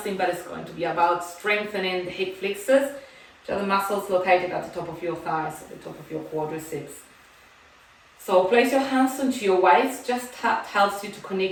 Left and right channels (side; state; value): both; identical; correlation 1.00